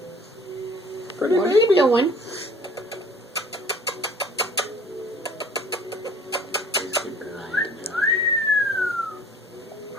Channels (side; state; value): both; normal; correlation 0.51